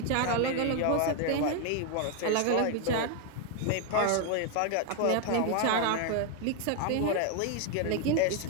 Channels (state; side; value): different; both; correlation 0.01